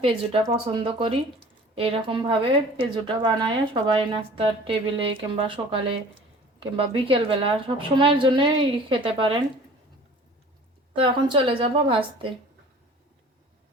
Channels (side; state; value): both; normal; correlation 0.46